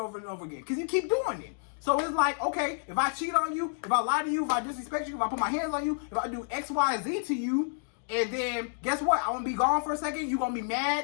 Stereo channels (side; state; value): right; silent; digital silence